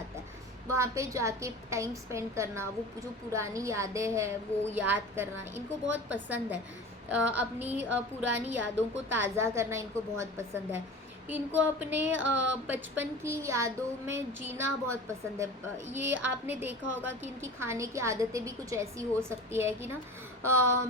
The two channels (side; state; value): both; normal; correlation 0.35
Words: है वहाँ पे जाके टाइम स्पेंड करना। वो जो पुरानी यादें हैं वो याद करना इनको बहुत पसंद है। अपनी पुरानी यादों को ताज़ा करना इनको बहुत पसंद है। इनको अपने बचपन की यादों में जीना बहुत पसंद है। ये आपने देखा होगा कि इनकी खाने की आदतें भी कुछ ऐसी हो सकती है कि ना